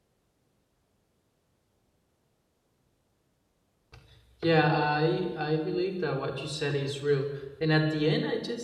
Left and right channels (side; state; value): both; identical; correlation 1.00